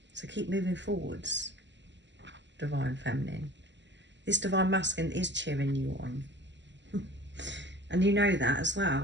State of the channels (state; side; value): late; left; 0.53 ms